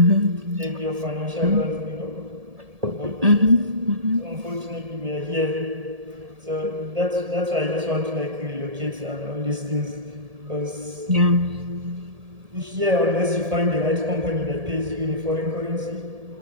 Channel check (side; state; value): left; late; 1.7 ms